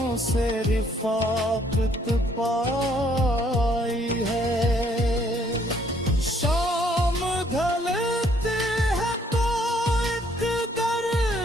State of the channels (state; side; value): normal; both; correlation 0.65